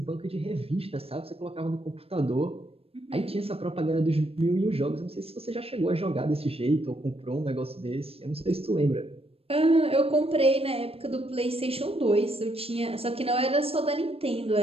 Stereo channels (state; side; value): late; left; 0.28 ms